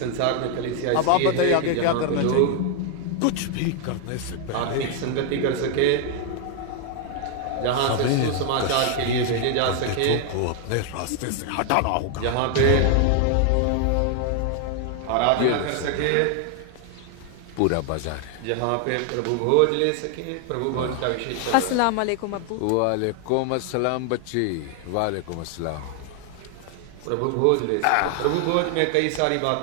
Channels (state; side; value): different; both; correlation 0.00